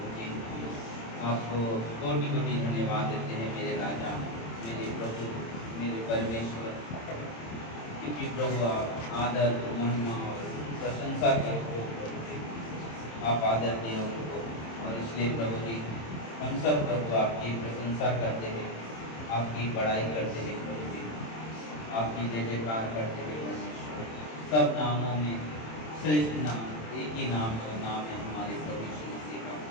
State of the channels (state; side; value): late; right; 27 ms